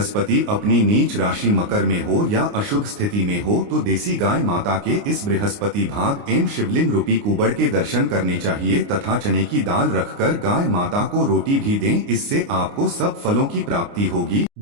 अपनी नीच राशि मकर में हो या अशुभ स्थिति में हो तो देसी गाय माता के इस बृहस्पति भाग एवं शिवलिंग रूपी कुबड़ के दर्शन करने चाहिए तथा चने की दाल रखकर गाय माता को रोटी भी दें। इससे आपको सब फलों की प्राप्ति होगी।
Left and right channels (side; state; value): left; late; 29 ms